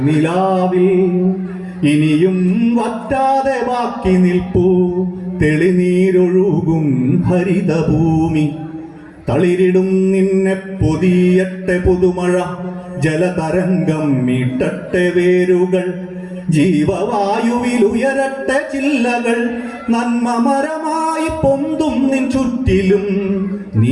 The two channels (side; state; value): both; identical; correlation 1.00